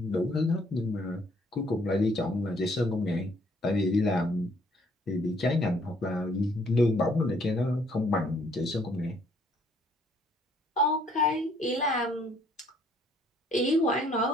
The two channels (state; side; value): normal; both; correlation 0.64